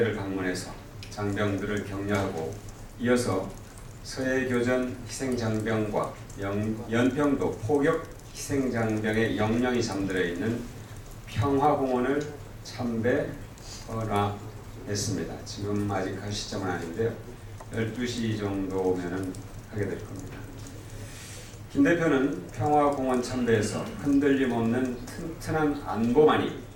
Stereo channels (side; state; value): both; identical; correlation 1.00